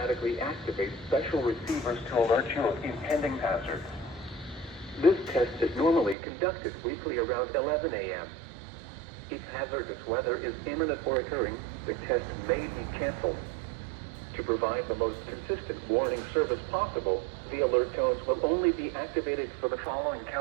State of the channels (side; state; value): left; drops out; at 6.2 s